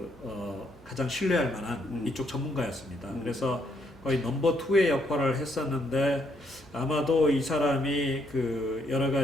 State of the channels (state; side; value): normal; both; correlation 0.73